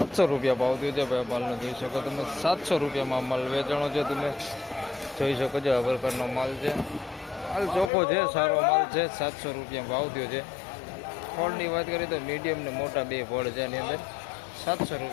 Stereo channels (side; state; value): right; drops out; at 7.9 s